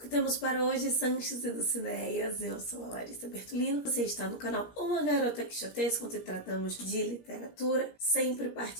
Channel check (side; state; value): right; late; 17 ms